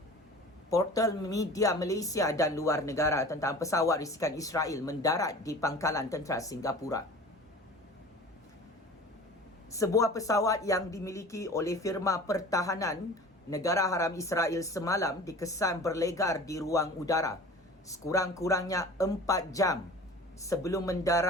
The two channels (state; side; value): normal; both; correlation 0.40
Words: portal media Malaysia dan luar negara tentang pesawat risikan Israel mendarat di pangkalan tentera Singapura. Sebuah pesawat yang dimiliki oleh firma pertahanan negara haram Israel semalam dikesan berlegar di ruang udara sekurang-kurangnya 4 jam sebelum